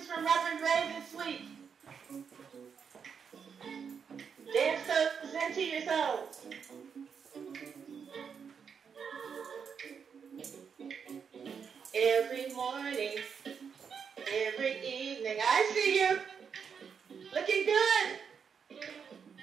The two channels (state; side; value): quieter; left; 6.6 dB